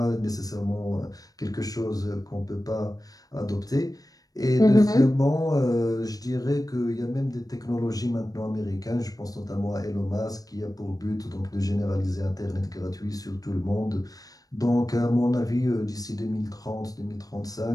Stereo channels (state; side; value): late; right; 0.18 ms